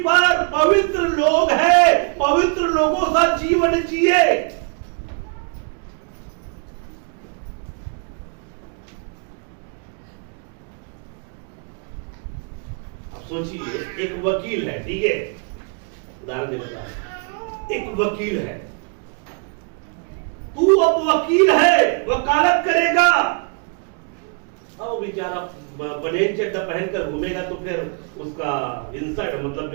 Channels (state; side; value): quieter; left; 38.8 dB